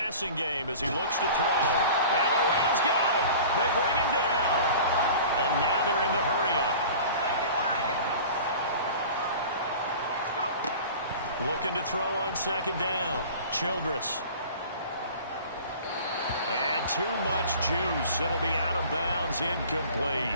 game as he looks to throw. And the Rams got him. They bring him down. And now they're in the hurry-up. Looking to throw on 2nd down. Childress. And too much juice. It'll be out of bounds,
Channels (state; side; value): inverted; both; correlation -0.41